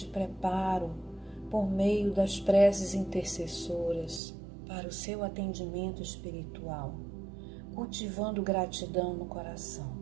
preparo por meio das preces intercessoras para o seu atendimento espiritual, cultivando gratidão no coração.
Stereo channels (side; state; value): left; drops out; at 4.2 s